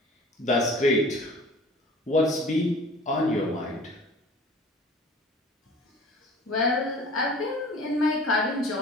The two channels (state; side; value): normal; both; correlation 0.45